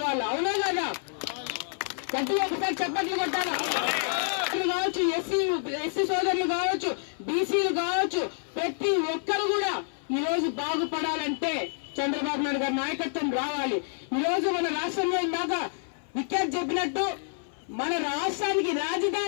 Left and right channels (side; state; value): right; silent; 57 dB below the other